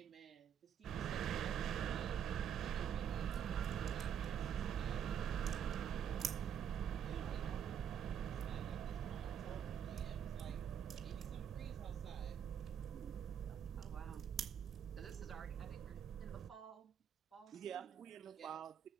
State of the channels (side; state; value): left; quieter; 8.4 dB